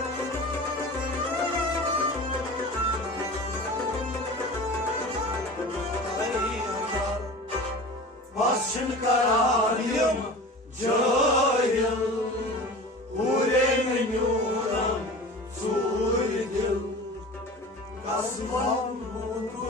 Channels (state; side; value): normal; both; correlation 0.36